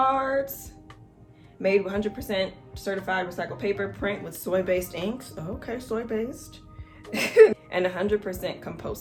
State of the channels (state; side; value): identical; both; correlation 1.00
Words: Made 100% certified recycled paper, print with soy-based inks. Oh, okay, soy-based. And 100%